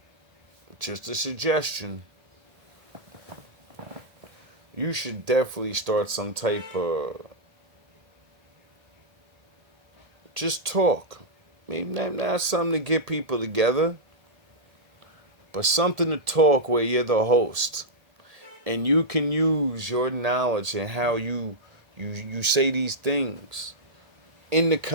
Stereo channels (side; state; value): left; late; 1.8 ms